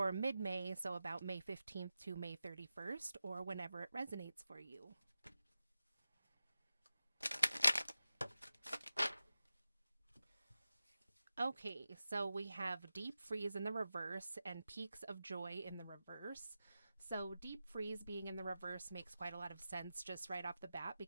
mid May, so about May 15th to May 31st, or whenever it resonates for you. Okay, so we have deep freeze in the reverse and peaks of joy in the reverse. So, deep freeze being in the reverse makes quite a lot of sense just right off the bat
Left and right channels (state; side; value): inverted; both; correlation -0.93